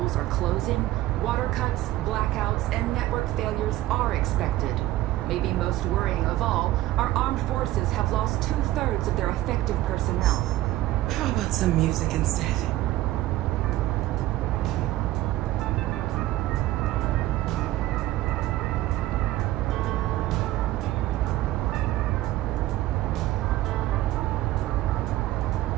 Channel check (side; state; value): left; quieter; 15.8 dB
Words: are closing, water cuts, blackouts, and network failures are expected. Maybe most worrying of all, our armed forces have lost 2/3 of their effective personnel. How about some music instead?